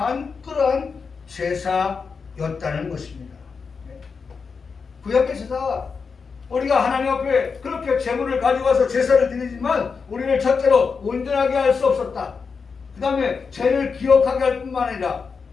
그러한 제사였다는 것입니다. 구약의 제사가 우리가 하나님 앞에 그렇게 제물을 가져와서 제사를 드리지만 우리를 첫째로 온전하게 할 수 없었다. 그 다음에 죄를 기억하게 할 뿐만 아니라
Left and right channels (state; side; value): quieter; right; 5.3 dB